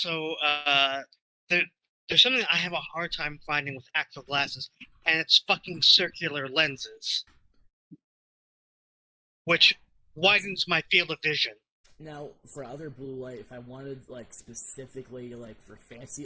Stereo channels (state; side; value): identical; both; correlation 1.00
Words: there's something I have a hard time finding with actual glasses, and it's fucking circular lenses, which widens my field of vision. Now, for other blue light, if I wanted like specifically like for